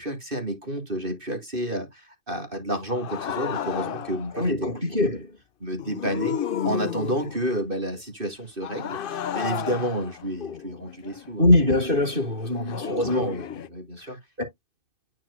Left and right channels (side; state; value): left; late; 2.6 ms